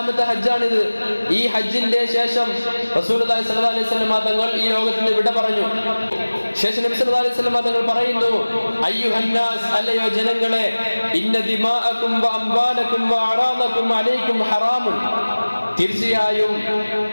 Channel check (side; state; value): both; inverted; correlation -1.00